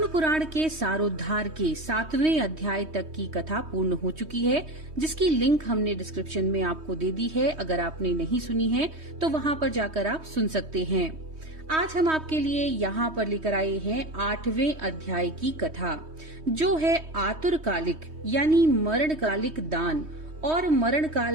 पुराण के सारोद्धार के 7वें अध्याय तक की कथा पूर्ण हो चुकी है, जिसकी लिंक हमने डिस्क्रिप्शन में आपको दे दी है। अगर आपने नहीं सुनी है तो वहां पर जाकर आप सुन सकते हैं। आज हम आपके लिए यहाँ पर लेकर आए हैं 8वें अध्याय की कथा, जो है आतुरकालिक यानी मरणकालिक दान और मरण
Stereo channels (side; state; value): left; late; 3.2 ms